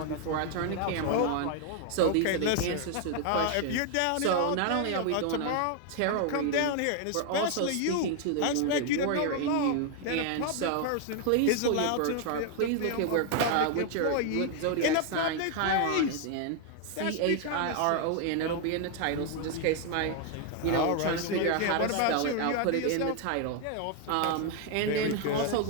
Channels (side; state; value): both; different; correlation 0.00